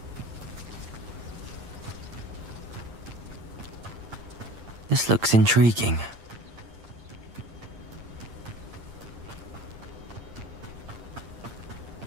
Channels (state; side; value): late; left; 8.8 ms